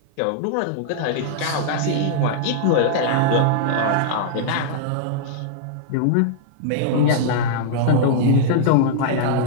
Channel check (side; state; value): both; different; correlation -0.01